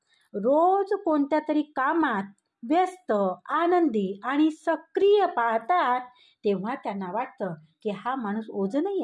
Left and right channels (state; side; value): identical; both; correlation 1.00